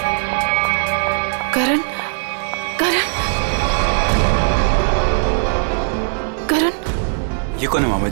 करण करण करण ये कौन है मामा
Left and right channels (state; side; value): silent; left; digital silence